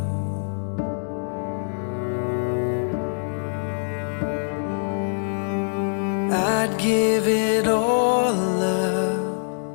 I'd give it all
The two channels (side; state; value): right; silent; digital silence